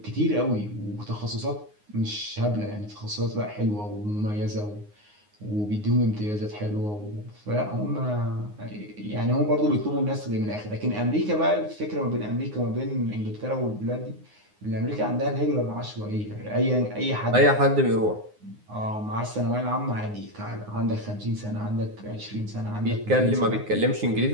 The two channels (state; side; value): late; left; 9.6 ms